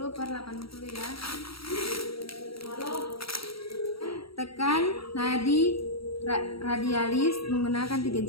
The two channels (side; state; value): right; late; 0.75 ms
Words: ya. Tekan nadi radialis menggunakan 3